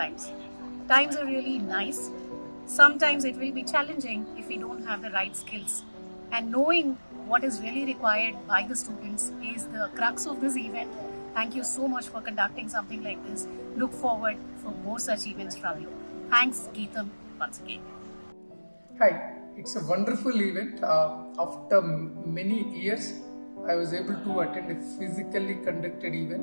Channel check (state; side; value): inverted; both; correlation -1.00